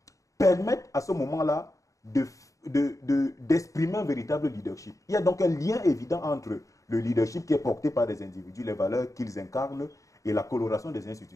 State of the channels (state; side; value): late; right; 0.16 ms